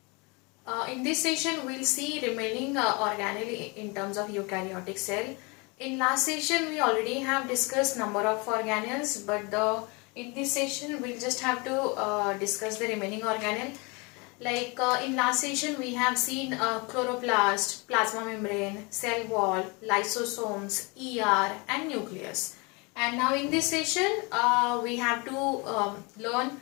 In this session, we'll see remaining organelle in terms of eukaryotic cell. In last session, we already have discussed number of organelles, but in this session, we'll just have to discuss the remaining organelle. Like in last session, we have seen chloroplast, plasma membrane, cell wall, lysosomes, ER, and nucleus. And now in this session, we have to learn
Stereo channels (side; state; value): right; quieter; 28.8 dB